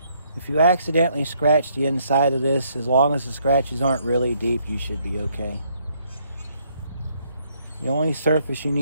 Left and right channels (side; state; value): both; inverted; correlation -0.70